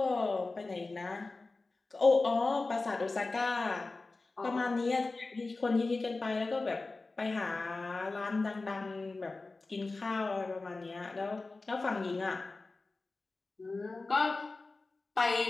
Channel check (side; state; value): right; quieter; 3.5 dB